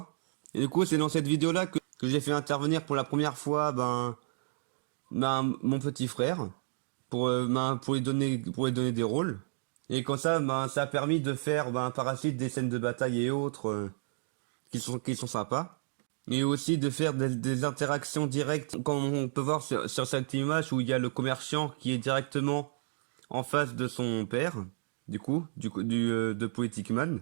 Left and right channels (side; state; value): left; silent; digital silence